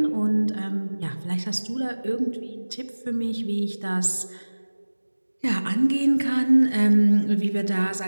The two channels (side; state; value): both; inverted; correlation -1.00